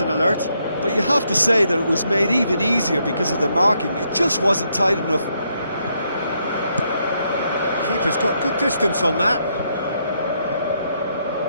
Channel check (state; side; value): inverted; both; correlation -0.76